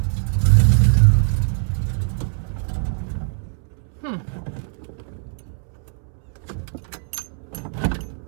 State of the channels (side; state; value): left; silent; 64 dB below the other